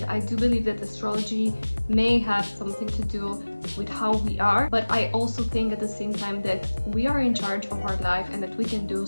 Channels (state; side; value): inverted; both; correlation -1.00